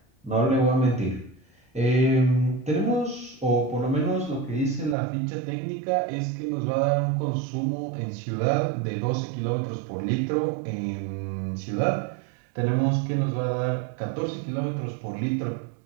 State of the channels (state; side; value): drops out; left; at 5.0 s